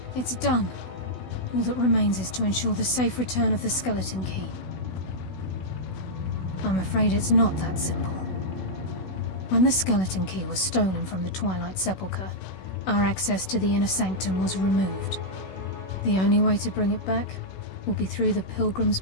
it's done. All that remains is to ensure the safe return of the skeleton key. I'm afraid it's not that simple. When the skeleton key was stolen from the Twilight Sepulchre, our access to the inner sanctum was removed. The only way to bring it back will be through the Pilgrim's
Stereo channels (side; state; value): right; late; 16 ms